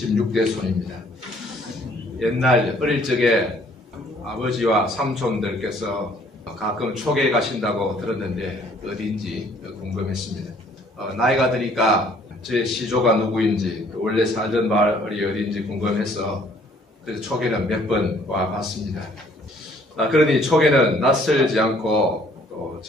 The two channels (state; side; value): normal; both; correlation 0.60